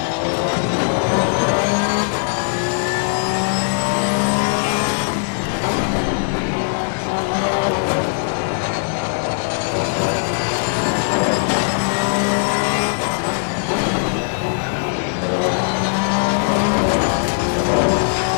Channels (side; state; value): right; silent; digital silence